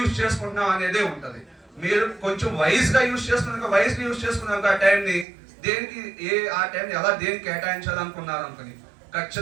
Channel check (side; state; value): left; drops out; at 5.2 s